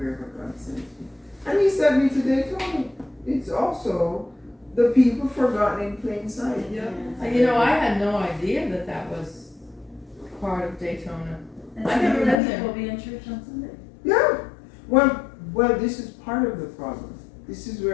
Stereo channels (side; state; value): right; drops out; at 12.4 s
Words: God sends me. And he sent me to Daytona. It's also the people forgotten in plain sight. Yeah. You know, I had no idea that was part of Daytona. And I so never been there. people will be in church on Sunday. Yeah. Well, this is part of the problem. This is